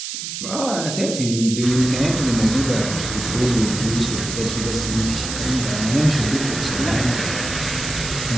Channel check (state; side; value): noise; right; hiss, 6 dB below the sound